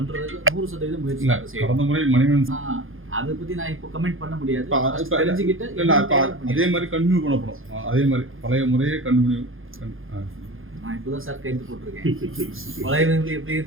100% முயற்சி செய்யும். கடந்த முறை மணிவன் அதை பற்றி நான் இப்போ கமெண்ட் பண்ண முடியாது. தெரிஞ்சுக்கிட்டு அதே மாதிரி கண்டினியூ பண்ணப்படும். அதே மாதிரி பழைய முறையே கண்டினியூ. நான் இப்போ தான் சார் கைது போட்டிருக்கேன். பழைய எப்படி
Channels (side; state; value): left; late; 0.60 ms